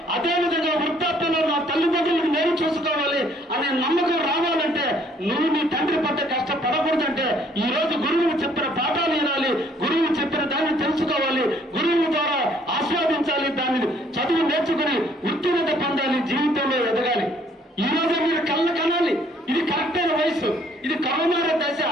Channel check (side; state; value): both; normal; correlation 0.63